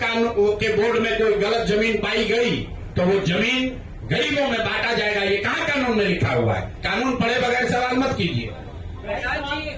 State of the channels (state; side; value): identical; both; correlation 1.00